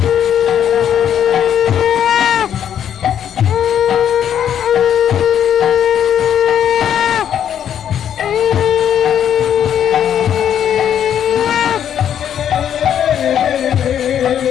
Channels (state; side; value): quieter; right; 9.4 dB